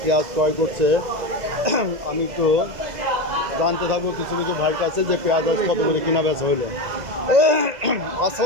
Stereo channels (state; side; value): late; left; 2.0 ms